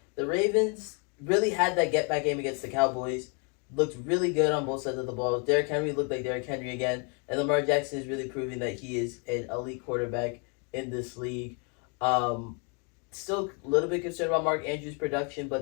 the Ravens really had that get back game against the Cowboys. Looked really good on both sides of the ball. Derrick Henry looked like Derrick Henry again, and Lamar Jackson is really proving that he is an elite quarterback in this league. Still a little bit concerned about Mark Andrews' production,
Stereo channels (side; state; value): right; quieter; 36.3 dB